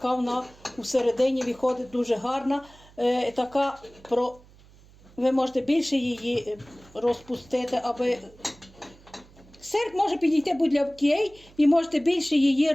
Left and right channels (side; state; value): right; noise; hum, 25 dB below the sound